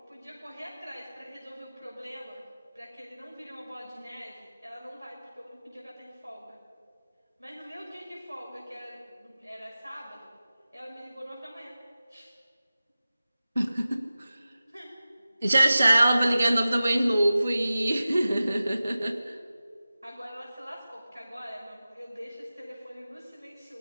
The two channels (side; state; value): both; inverted; correlation -0.95